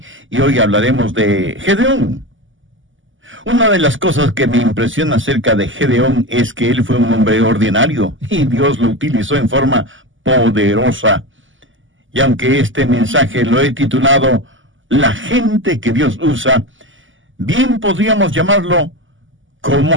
y hoy hablaremos de Gedeón. Una de las cosas que me impresiona acerca de Gedeón es que él fue un hombre ordinario y Dios lo utilizó en forma poderosa. Y aunque este mensaje lo he titulado La gente que Dios usa, bien podríamos llamarlo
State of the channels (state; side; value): late; left; 0.57 ms